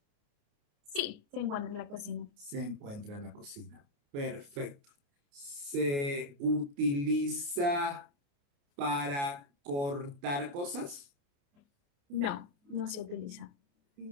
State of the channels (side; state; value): left; late; 29 ms